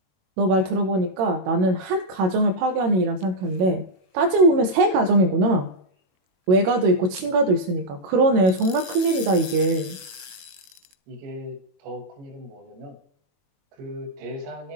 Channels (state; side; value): late; left; 21 ms